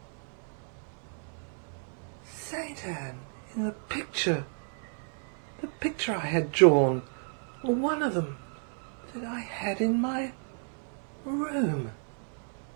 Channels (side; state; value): left; silent; 55 dB below the other